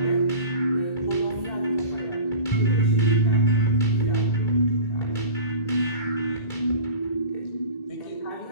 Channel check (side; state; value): right; late; 2.3 ms